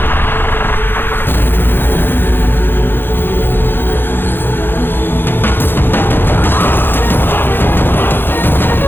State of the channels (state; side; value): late; right; 0.10 ms